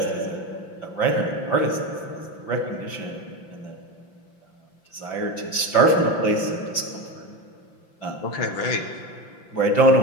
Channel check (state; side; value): late; right; 5.8 ms